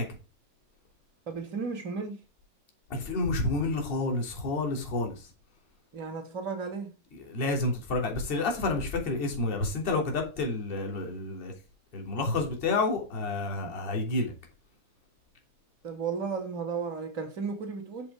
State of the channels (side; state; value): left; late; 2.7 ms